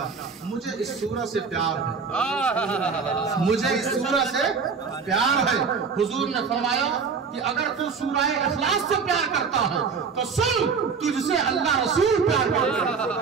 مجھے اس سورہ سے پیار ہے، مجھے اس سورہ سے پیار ہے. حضور نے فرمایا کہ اگر تو سورہ اخلاص سے پیار کرتا ہے تو سن، تجھ سے اللہ رسول پیار کرتا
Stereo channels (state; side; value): quieter; left; 5.5 dB